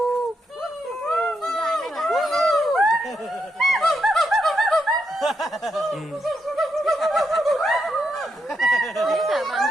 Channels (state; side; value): normal; both; correlation 0.81